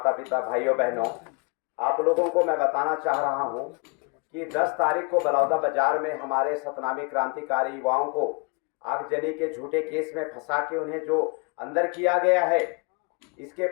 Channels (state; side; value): quieter; right; 33.4 dB